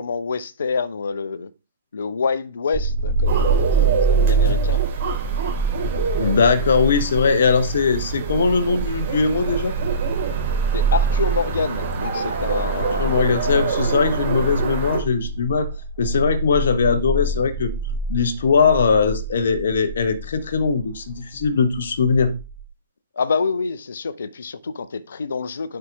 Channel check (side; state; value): both; inverted; correlation -0.47